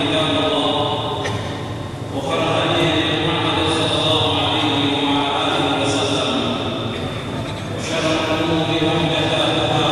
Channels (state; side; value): identical; both; correlation 1.00